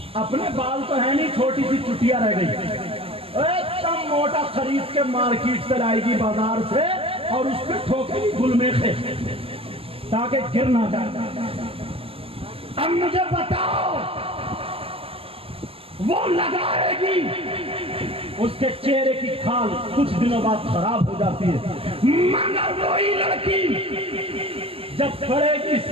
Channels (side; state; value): left; late; 0.27 ms